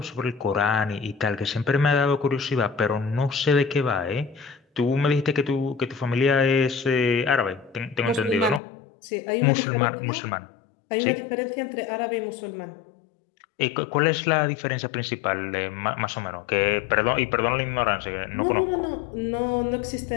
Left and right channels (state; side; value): drops out; right; at 8.6 s